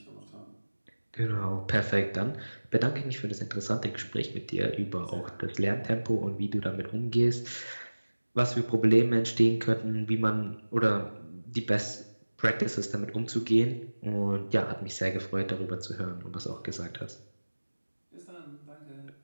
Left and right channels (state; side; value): inverted; both; correlation -1.00